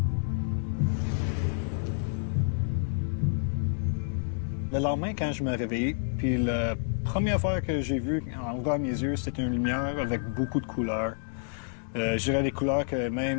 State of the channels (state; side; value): silent; right; digital silence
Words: Le lendemain, quand je me réveillais, puis la première fois que j'ai vu en ouvrant mes yeux, c'était une lumière avec beaucoup de couleurs. Je dirais des couleurs que